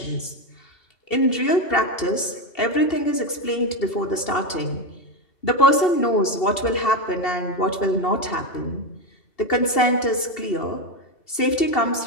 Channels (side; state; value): right; late; 2.7 ms